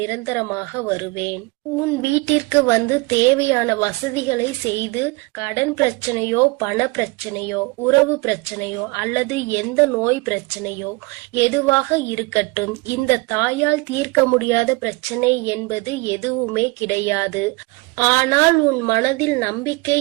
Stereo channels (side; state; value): left; quieter; 26.1 dB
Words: நிரந்தரமாக வருவேன். உன் வீட்டிற்கு வந்து தேவையான வசதிகளை செய்து கடன் பிரச்சனையோ பண பிரச்சனையோ உறவு பிரச்சனையோ அல்லது எந்த நோய் பிரச்சனையோ எதுவாக இருக்கட்டும், இந்த தாயால் தீர்க்க முடியாத பிரச்சனை என்பது எதுவுமே கிடையாது. ஆனால் உன் மனதில் நம்பிக்கை